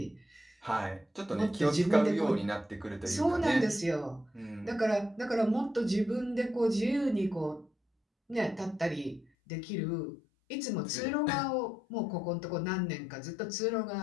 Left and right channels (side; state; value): right; drops out; at 9.2 s